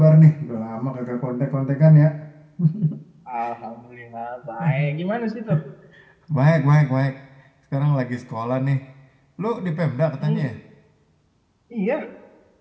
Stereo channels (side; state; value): both; identical; correlation 1.00